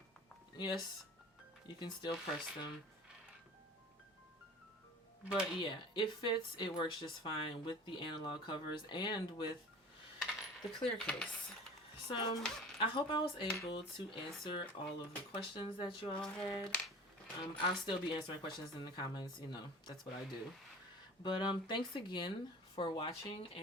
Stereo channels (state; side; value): normal; both; correlation 0.40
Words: Yes, you can still press them. But yeah, it fits. It works just fine with the analog covers and with the clear case. So I hope I was able to answer all of the questions that you all had. I'll still be answering questions in the comments, you know, that's what I do. But thanks again for watching,